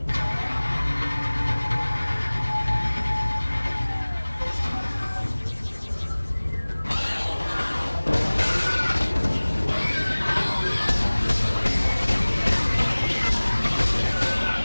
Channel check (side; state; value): both; inverted; correlation -1.00